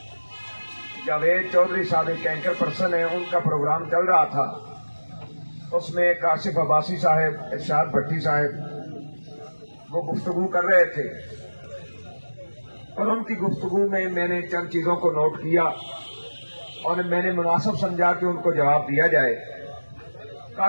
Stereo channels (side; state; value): both; inverted; correlation -1.00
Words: جاوید چودھری صاحب ایک اینکر پرسن ہیں، ان کا پروگرام چل رہا تھا۔ اس میں کاشف عباسی صاحب، ارشاد بھٹی صاحب وہ گفتگو کر رہے تھے، اور ان کی گفتگو میں نے چند چیزوں کو نوٹ کیا اور میں نے مناسب سمجھا کہ ان کو جواب دیا جائے۔